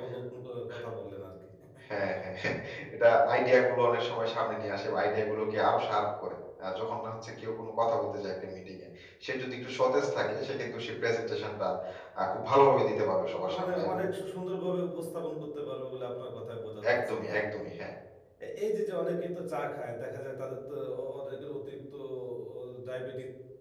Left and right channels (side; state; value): both; identical; correlation 1.00